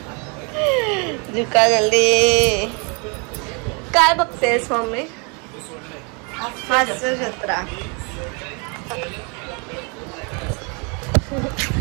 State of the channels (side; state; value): left; quieter; 33.4 dB